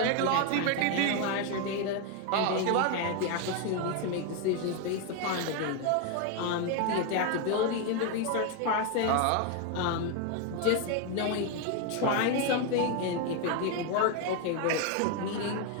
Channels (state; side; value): different; both; correlation 0.01